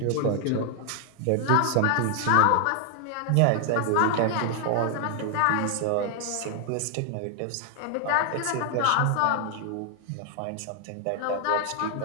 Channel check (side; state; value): both; different; correlation 0.00